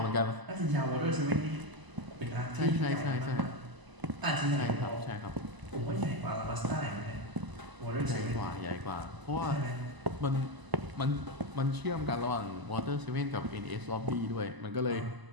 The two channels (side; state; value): left; late; 1.0 ms